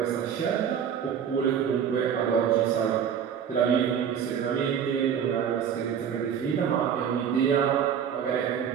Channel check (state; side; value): quieter; left; 8.2 dB